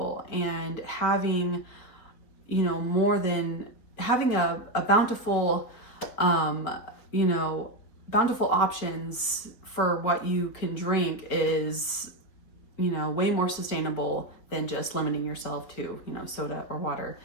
And having, you know, more than having a bountiful, you know, bountiful options for what you can drink is, you know, way more sustainable than just limiting yourself to, you know, soda or water,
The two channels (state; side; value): late; right; 4.3 ms